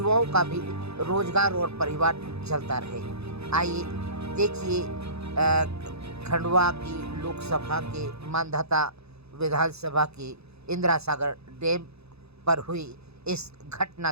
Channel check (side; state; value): left; late; 0.79 ms